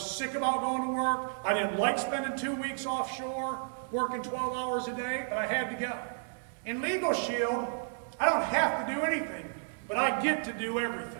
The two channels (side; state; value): left; silent; digital silence